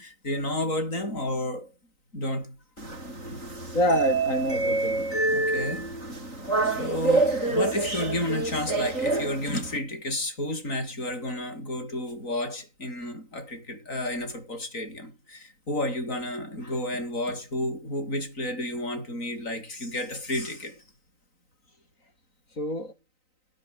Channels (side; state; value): right; late; 3.9 ms